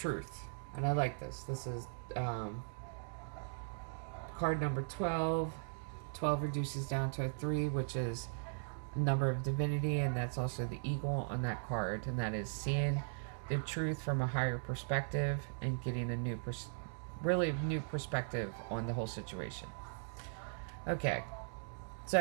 And I like this. This is card number 12. 12 reduces down to a 3, which is a number of divinity, and that's also the eagle on that card, and that is seeing the truth from a higher perspective and getting a new really new perspective on the whole situation. Okay,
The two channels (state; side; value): silent; left; digital silence